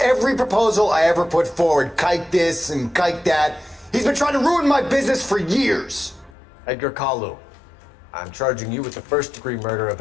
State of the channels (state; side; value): drops out; right; at 6.4 s